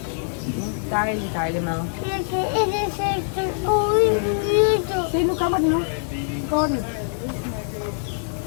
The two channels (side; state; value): right; silent; digital silence